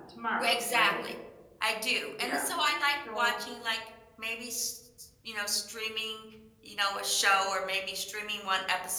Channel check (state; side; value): identical; both; correlation 1.00